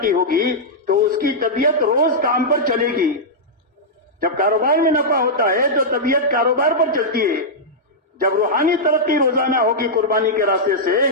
ہوگی تو اس کی طبیعت روز کام پر چلے گی. جب کاروبار میں نفع ہوتا ہے تو طبیعت کاروبار پر چلتی ہے. جب روحانی ترقی روزانہ ہوگی قربانی کے راستے سے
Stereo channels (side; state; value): both; normal; correlation -0.09